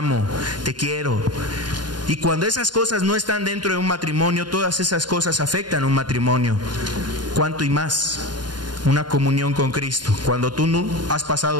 te quiero. Y cuando esas cosas no están dentro de un matrimonio, todas esas cosas afectan un matrimonio. ¿Cuánto y más? Una comunión con Cristo. Cuando tú no has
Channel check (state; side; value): late; left; 0.70 ms